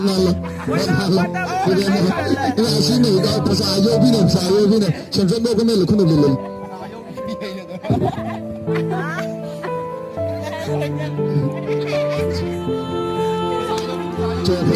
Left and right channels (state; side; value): identical; both; correlation 1.00